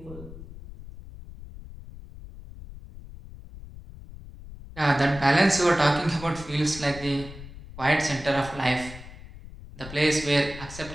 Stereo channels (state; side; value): noise; left; rumble, 15 dB below the sound